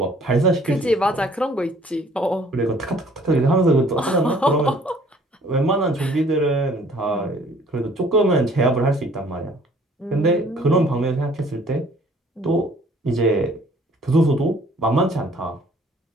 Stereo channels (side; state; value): both; normal; correlation 0.56